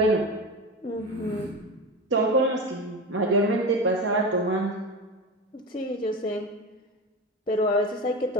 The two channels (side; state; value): both; normal; correlation 0.25